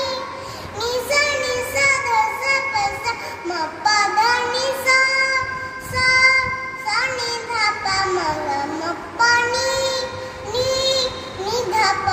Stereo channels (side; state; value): both; identical; correlation 1.00